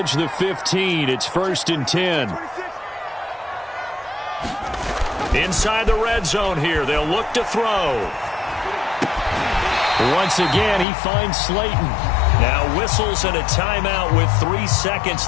the 15. It's 1st and 10. Inside the red zone here. They'll look to throw. Once again, he finds Slayton. Now whistles and a timeout with 3 seconds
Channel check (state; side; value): drops out; right; at 10.9 s